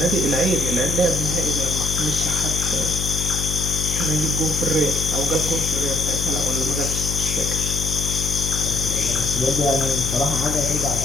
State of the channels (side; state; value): left; noise; hum, 4 dB below the sound